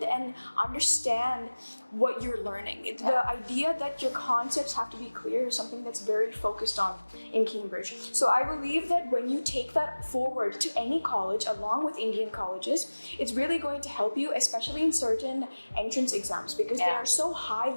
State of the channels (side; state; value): both; inverted; correlation -1.00